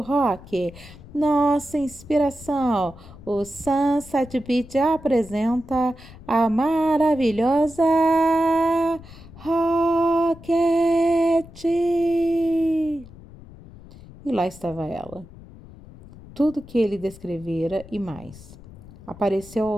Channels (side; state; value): left; noise; rumble, 19 dB below the sound